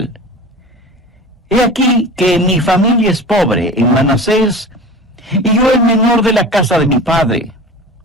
He aquí que mi familia es pobre en Manasés, y yo el menor de la casa de mi padre.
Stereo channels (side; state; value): both; normal; correlation 0.35